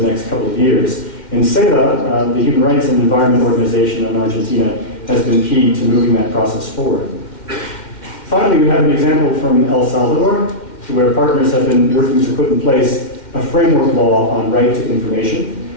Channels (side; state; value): right; late; 2.1 ms